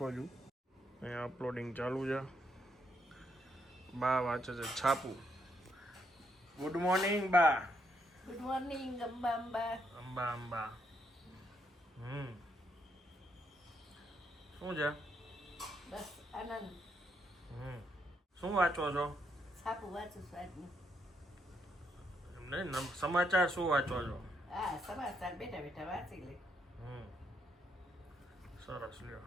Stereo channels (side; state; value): both; normal; correlation 0.76